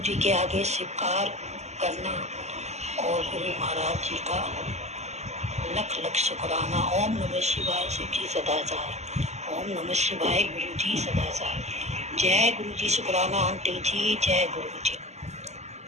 जी के आगे स्वीकार करना और गुरु महाराज जी का लख लख शुक्राना। ओम नमः शिवाय शिव जी सदा सहाय। ओम नमः शिवाय गुरु जी सदा सहाय। जय गुरु जी। शुक्राना आंटी जी। जय गुरु जी।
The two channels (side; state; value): left; late; 0.33 ms